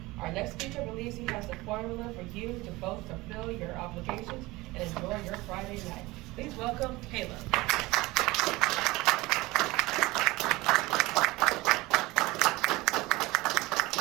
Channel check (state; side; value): quieter; left; 20.8 dB